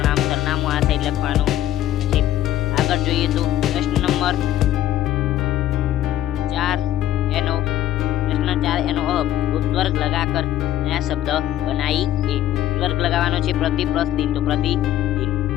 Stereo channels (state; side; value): quieter; right; 12.8 dB